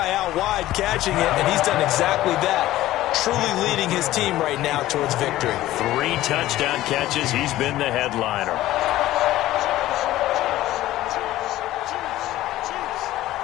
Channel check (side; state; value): right; quieter; 15.3 dB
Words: out wide catching it, and he's done exactly that. Truly leading his team right now towards victory. 3 touchdown catches. He's been the headliner.